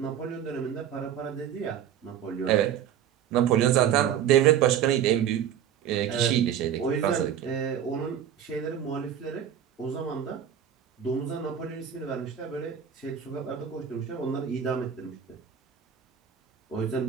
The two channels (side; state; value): left; quieter; 9.3 dB